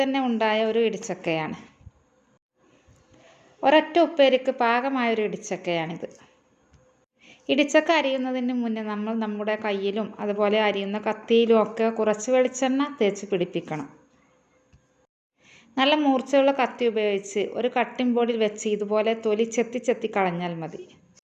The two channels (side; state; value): both; identical; correlation 1.00